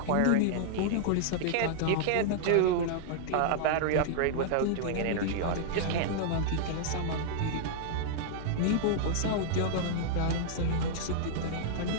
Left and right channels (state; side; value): different; both; correlation -0.01